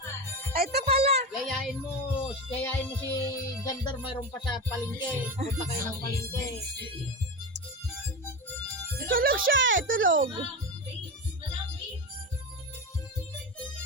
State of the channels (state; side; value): normal; both; correlation 0.21